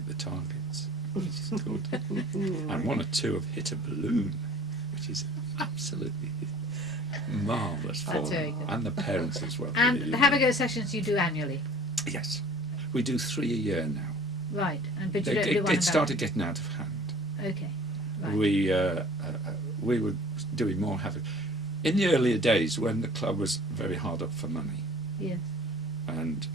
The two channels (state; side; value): normal; both; correlation 0.49